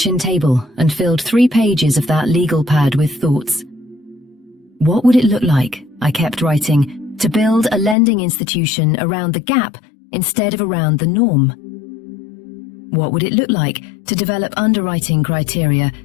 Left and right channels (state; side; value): drops out; right; at 8.0 s